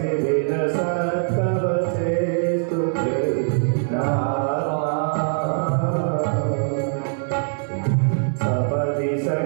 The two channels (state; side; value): silent; left; 61 dB below the other